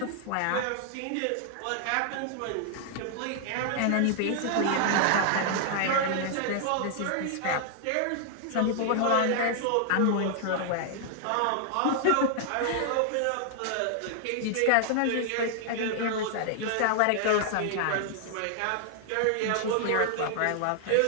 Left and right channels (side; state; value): both; different; correlation 0.00